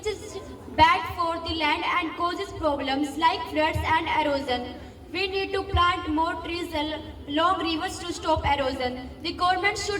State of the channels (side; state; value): both; identical; correlation 1.00